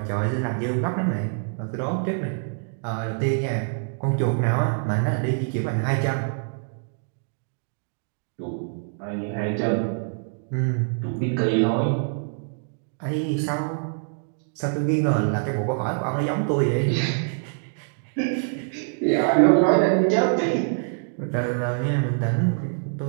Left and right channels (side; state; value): left; silent; 57 dB below the other